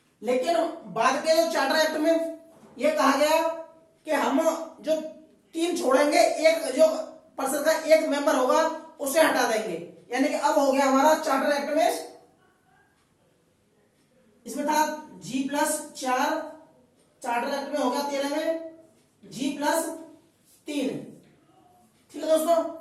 लेकिन बाद के जो चार्टर एक्ट में यह कहा गया कि हम जो 3 छोड़ेंगे, एक जो परिषद का एक मेंबर होगा उसे हटा देंगे। यानी कि अब हो गया हमारा चार्टर एक्ट में, इसमें था G+4, चार्टर एक्ट में हो गया 13 में G+3। ठीक है दोस्तों,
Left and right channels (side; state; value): both; identical; correlation 1.00